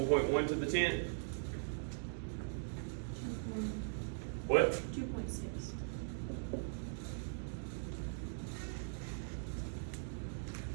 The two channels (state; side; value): silent; left; digital silence